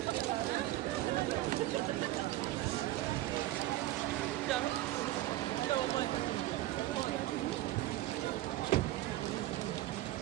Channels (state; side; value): quieter; left; 15.9 dB